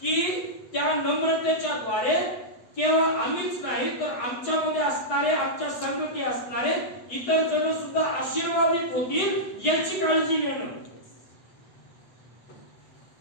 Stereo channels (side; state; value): right; late; 8.1 ms